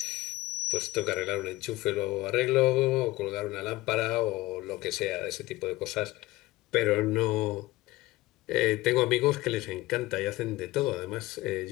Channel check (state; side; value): quieter; right; 18.7 dB